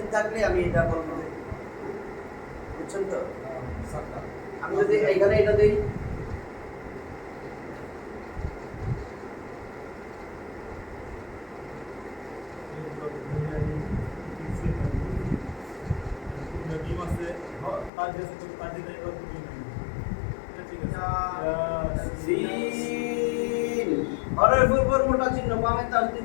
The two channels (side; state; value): right; drops out; at 17.9 s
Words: থাকলে আমি এটা বলবো। বুঝছেন তো? আমি যদি এইখানে এটা দেই, নবীম আছে তার কাছে তো তার দিনে আর কিছু নেই। এটা ঠিক আছে। সিন হরফের উপর মোটা চিহ্ন বামে